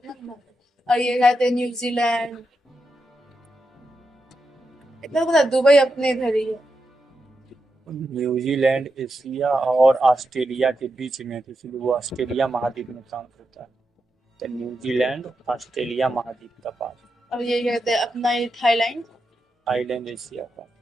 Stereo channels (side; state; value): both; normal; correlation 0.86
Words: और ये कहते हैं न्यूजीलैंड, इतना पता, दुबई अपने इधर ही है। न्यूजीलैंड एशिया और ऑस्ट्रेलिया के बीच में, तो इसलिए वो ऑस्ट्रेलिया महाद्वीप में काम करता है। तो न्यूजीलैंड ऑस्ट्रेलिया महाद्वीप का पास। और ये कहते हैं अपना ये थाईलैंड। थाईलैंड एशिया का,